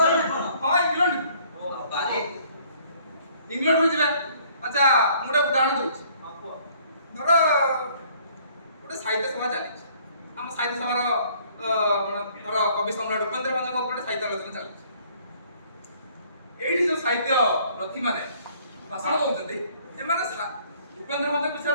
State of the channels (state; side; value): inverted; both; correlation -0.59